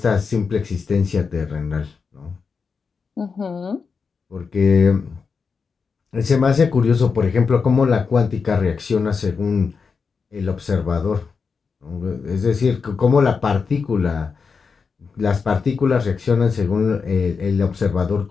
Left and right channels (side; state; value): right; quieter; 5.3 dB